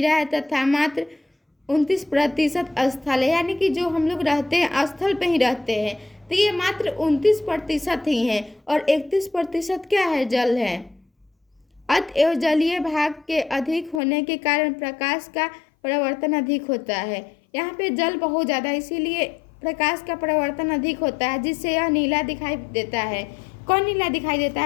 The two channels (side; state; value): right; drops out; at 14.0 s